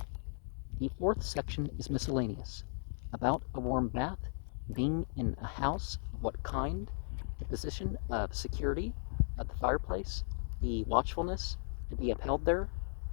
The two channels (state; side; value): silent; right; 53 dB below the other